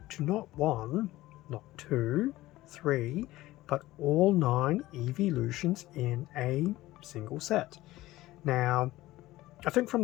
to not one, not two, three, but all 9 Eeveelutions in a single set? Now, I think from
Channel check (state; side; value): quieter; right; 17.1 dB